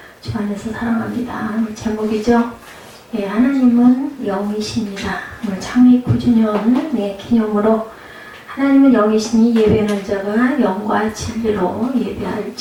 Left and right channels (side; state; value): both; identical; correlation 1.00